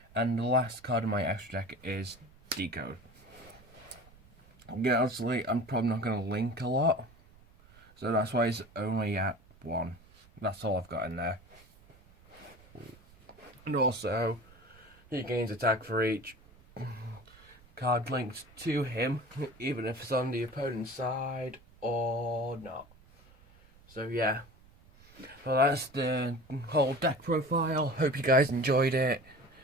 And the last card in my extra deck is Decode. Yeah, obviously, I'm probably not going to link a lot. So that's why it's only at 1. That's all I've got in there. And also, he gains attack for each card linked to him, even if it's on the opponent's side or not. So yeah. Well, that's the whole deck profile. Hope you guys enjoyed it.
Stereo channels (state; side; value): noise; right; rumble, 26 dB below the sound